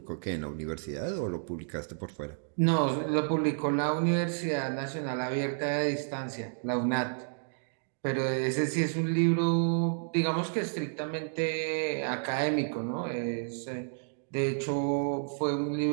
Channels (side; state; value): left; silent; digital silence